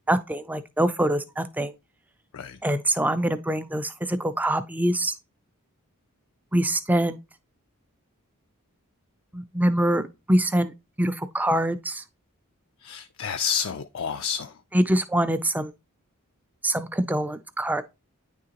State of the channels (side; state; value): both; normal; correlation 0.72